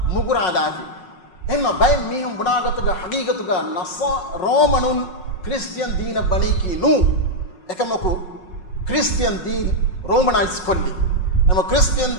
मुगुरादाफी एमा बाय मीहुं बुनागतगा हकीकतगा नसा रोमनुन क्रिश्चियन दीन बनी की नु एकमको क्रिश्चियन दीन रोमनाइज कोल्ली एमा क्रिश्चियन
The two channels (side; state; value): right; late; 5.5 ms